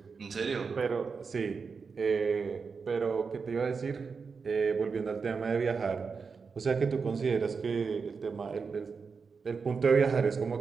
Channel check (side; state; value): left; quieter; 5.2 dB